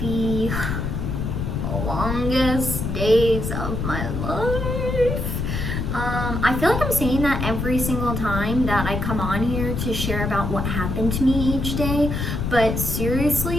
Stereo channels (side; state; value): left; noise; rumble, 2 dB below the sound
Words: longest days of my life. I feel like I'm saying that every single time that I come on here to share about what happened to me each day, but